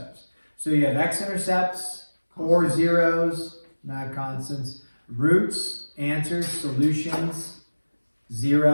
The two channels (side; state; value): both; inverted; correlation -1.00